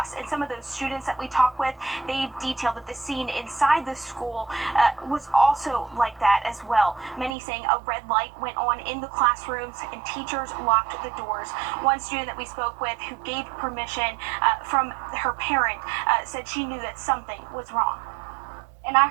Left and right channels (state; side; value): drops out; left; at 7.3 s